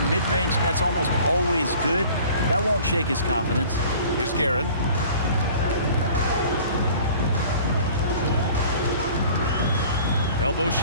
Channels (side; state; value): both; inverted; correlation -0.47